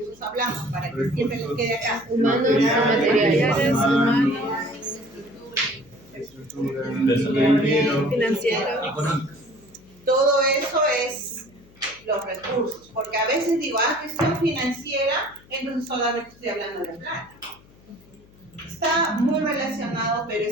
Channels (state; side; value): noise; left; hum, 26 dB below the sound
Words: hablamos? Para que siempre les quede acá. humanos y materiales, humanos, estructura, financieros. Todo eso es los recursos, porque a veces digo, gestión financiera, entonces solamente estoy hablando de plata. Está muy relacionado, pero